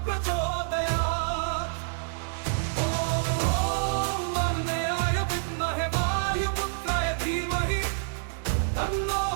प्रचोदयात् ॐ अग्नेयाय विद्महे वायुपुत्राय धीमहि तन्नो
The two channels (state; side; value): silent; left; digital silence